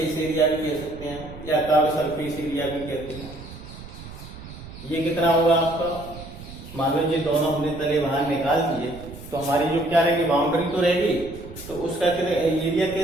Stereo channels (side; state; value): right; noise; rumble, 15 dB below the sound